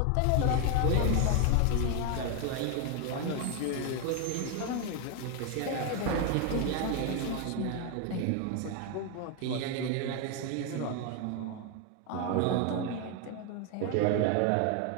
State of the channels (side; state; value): both; different; correlation 0.01